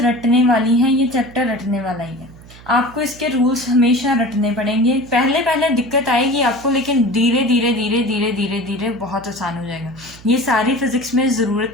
वाली हैं, ये चैप्टर रटने वाला ही है। आपको इसके रूल्स हमेशा रटने पड़ेंगे। पहले पहले दिक्कत आएगी आपको, लेकिन धीरे धीरे धीरे धीरे धीरे धीरे बहुत आसान हो जाएगा। ये सारी फिजिक्स में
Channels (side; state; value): right; noise; hum, 21 dB below the sound